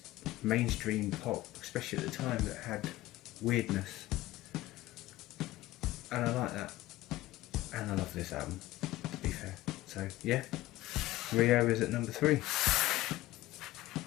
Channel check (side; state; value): right; quieter; 16.8 dB